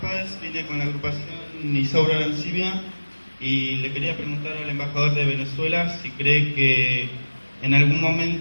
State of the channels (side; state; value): both; inverted; correlation -1.00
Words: vine con la agrupación Isaura Arancibia y le quería preguntar al embajador de Venezuela si cree que en algún